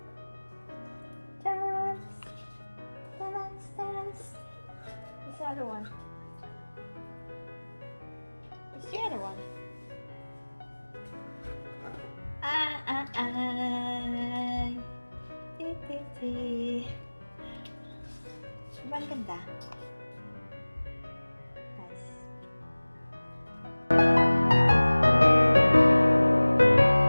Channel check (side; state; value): both; inverted; correlation -1.00